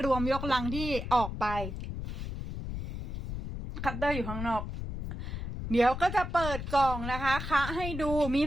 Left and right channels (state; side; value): noise; left; rumble, 6 dB below the sound